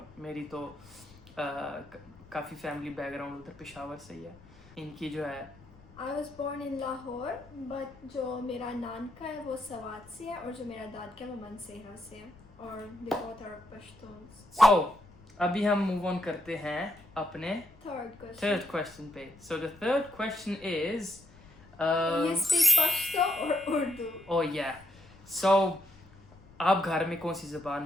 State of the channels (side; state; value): left; noise; rumble, 24 dB below the sound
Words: میری تو کافی family back ground ادھر پشاور سے ہی ہے. ان کی جو ہے I was born in Lahore, but جو میرا نانکا ہے وہ سوات سے ہے، اور جو میرا دادکا ہے وہ منسہرہ سے ہے، اور they both are Pashtuns. So ابھی ہم موو آن کرتے ہیں اپنے Third question پہ. So the third question is You speak Pashto or Urdu? oh yeah. So آپ گھر میں کون سی